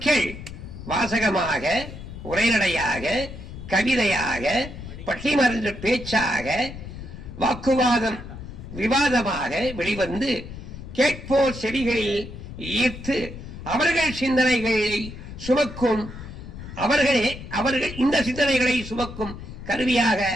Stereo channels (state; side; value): noise; left; rumble, 12 dB below the sound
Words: வாசகமாக, உரைநடையாக, கவிதையாக, பட்டிமன்ற பேச்சாக, வாக்குவாதம் விவாதமாக வெளிவந்து கேட்போர் செவிகளில் ஈர்த்து அவர்கள் சிந்தனைகளை சுமக்கும், அவர்கள் இந்த சிந்தனைகளை சுமக்கும் கருவியாக